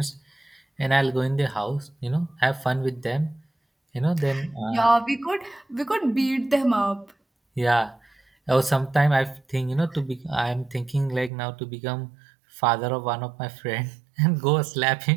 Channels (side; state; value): left; drops out; at 11.3 s